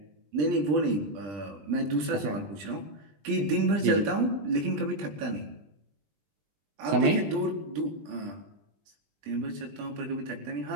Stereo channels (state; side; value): late; left; 20 ms